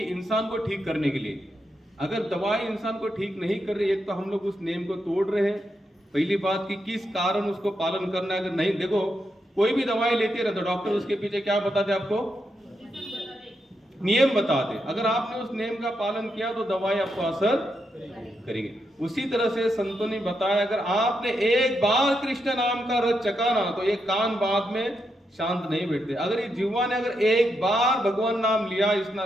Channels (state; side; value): normal; both; correlation 0.83